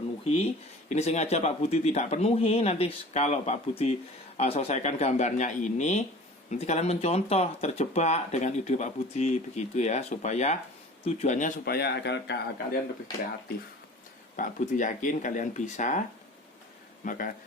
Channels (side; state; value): both; normal; correlation 0.42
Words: Ini sengaja Pak Budi tidak penuhi. Nanti kalau Pak Budi selesaikan gambarnya ini, nanti kalian mencontoh, terjebak dengan ide Pak Budi begitu, ya, supaya tujuannya supaya agar kalian lebih kreatif. Pak Budi yakin kalian bisa, maka